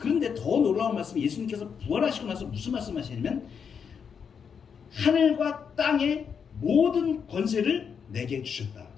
더 놀라운 말씀이 예수님께서 부활하시고 나서 무슨 말씀하시냐면 하늘과 땅의 모든 권세를 내게 주셨다.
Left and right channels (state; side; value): quieter; right; 6.8 dB